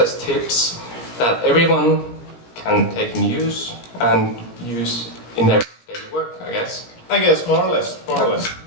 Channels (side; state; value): right; late; 17 ms